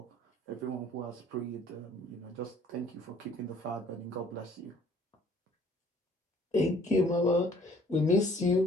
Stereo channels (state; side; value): normal; both; correlation 0.57